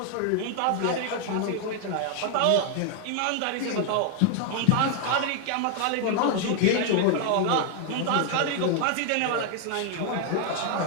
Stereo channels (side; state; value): both; different; correlation 0.00